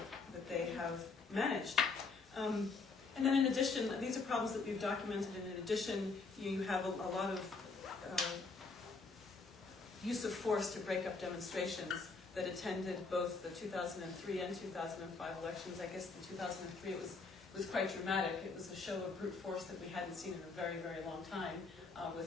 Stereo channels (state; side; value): quieter; right; 4.2 dB